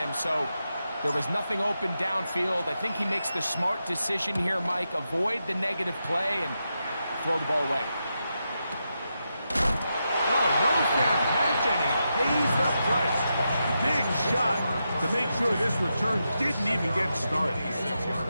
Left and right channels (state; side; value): inverted; both; correlation -0.87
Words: So there was nothing open downfield. I think he makes the smart decision here, Mike. Avoid the negative play and throw the ball away. No fair catch, and he pays the price. Big shot to make sure this return didn't even get started.